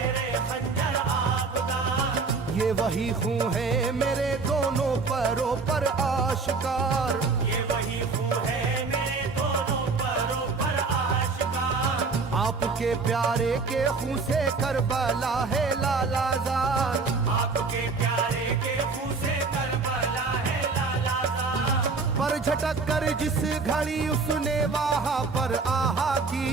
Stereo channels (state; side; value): quieter; left; 4.4 dB